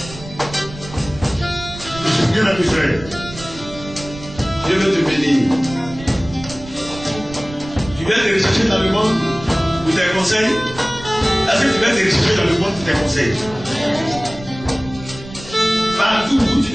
Je suis bien habitué. Dieu veut te bénir. Tu viens te rechercher dans le monde pour tes conseils. Est-ce que tu viens te rechercher dans le monde pour tes conseils? Partout où tu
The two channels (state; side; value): noise; right; rumble, 15 dB below the sound